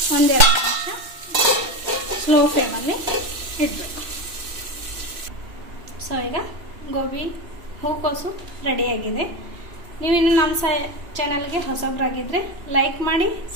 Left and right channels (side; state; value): left; late; 3.0 ms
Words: ಒಂದೆರಡು ನಿಮಿಷ ಸ್ಲೋ ಫ್ಲೇಮಲ್ಲಿ ಇಡಬೇಕು. ಸೊ ಈಗ ಗೋಬಿ ಹೂಕೋಸು ರೆಡಿಯಾಗಿದೆ. ನೀವಿನ್ನು ನಮ್ಮ ಚಾನಲ್ಗೆ ಹೊಸಬ್ರಾಗಿದ್ದರೆ ಲೈಕ್ ಮಾಡಿ,